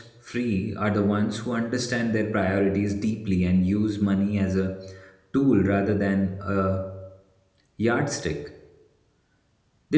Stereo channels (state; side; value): identical; both; correlation 1.00